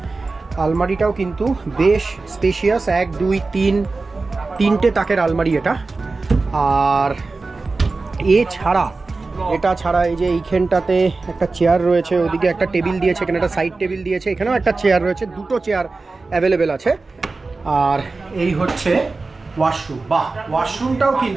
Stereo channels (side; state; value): left; quieter; 3.7 dB